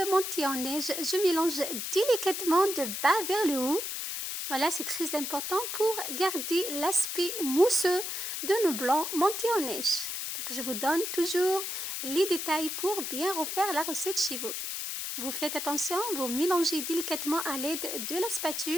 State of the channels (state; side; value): noise; left; hiss, 4 dB below the sound